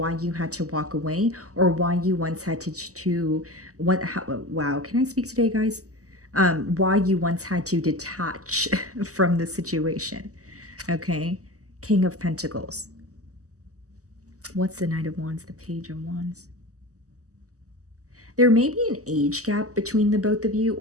you had to walk away, or why you once had to what how, wow, can I speak today, guys? Why you once had to detach from the situation. Okay. King of Pentacles. What's the Knight of Wands? The Page of Wands. There may be an age gap between the both of you,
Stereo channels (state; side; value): late; left; 0.66 ms